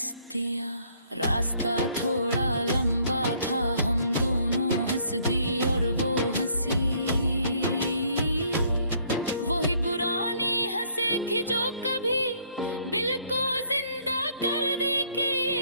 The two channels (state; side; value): inverted; both; correlation -0.64